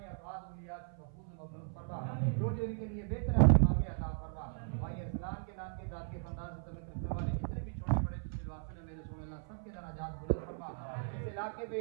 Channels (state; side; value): silent; left; 53 dB below the other